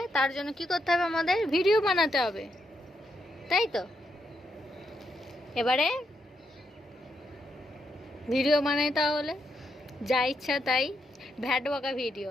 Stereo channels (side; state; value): both; normal; correlation 0.80